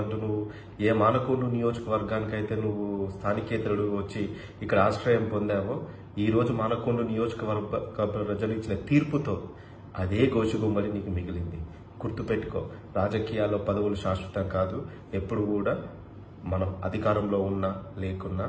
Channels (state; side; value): identical; both; correlation 1.00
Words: అంటూ నువ్వు ఏ మానకొండూరు నియోజకవర్గానికైతే నువ్వు స్థానికేతరుడు వచ్చి ఇక్కడ ఆశ్రయం పొందావో, ఈ రోజు మానకొండూరు నియోజకవర్గ ప్రజలు ఇచ్చిన తీర్పుతో అదే గోషిగొంగడి నీకు మిగిలింది. గుర్తుపెట్టుకో, రాజకీయాల్లో పదవులు శాశ్వతం కాదు. ఎప్పుడు కూడా మనం అధికారంలో ఉన్నా లేకున్నా